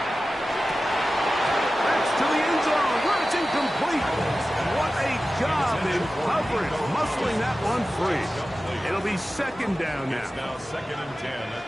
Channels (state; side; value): normal; both; correlation 0.95